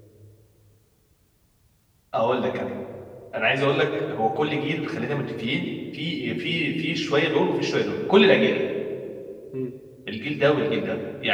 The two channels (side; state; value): both; identical; correlation 1.00